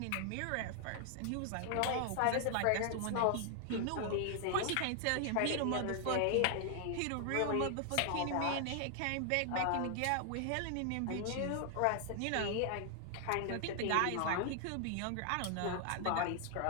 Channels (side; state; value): both; different; correlation 0.00